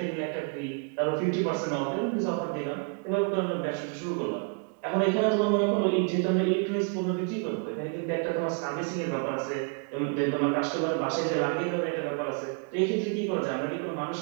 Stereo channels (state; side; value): quieter; left; 38.5 dB